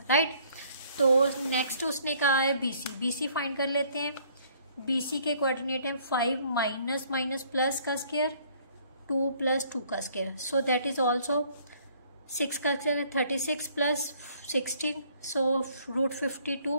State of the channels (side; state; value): both; inverted; correlation -0.60